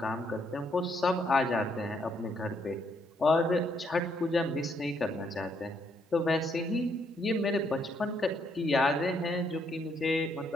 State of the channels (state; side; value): normal; both; correlation 0.73